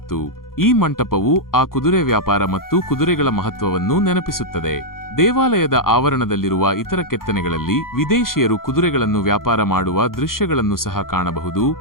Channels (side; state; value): right; late; 0.92 ms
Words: ಈ ಮಂಟಪವು ಆ ಕುದುರೆ ವ್ಯಾಪಾರ ಮತ್ತು ಕುದುರೆಗಳ ಮಹತ್ವವನ್ನು ನೆನಪಿಸುತ್ತದೆ. ದೇವಾಲಯದ ಆವರಣದಲ್ಲಿರುವ ಇತರ ಕೆತ್ತನೆಗಳಲ್ಲಿ ವಿದೇಶಿಯರು ಕುದುರೆಗಳನ್ನು ವ್ಯಾಪಾರ ಮಾಡುವ ದೃಶ್ಯಗಳನ್ನು ಸಹ ಕಾಣಬಹುದು.